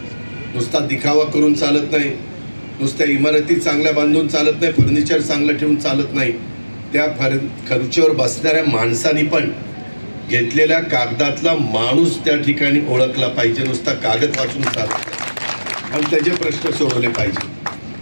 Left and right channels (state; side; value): inverted; both; correlation -1.00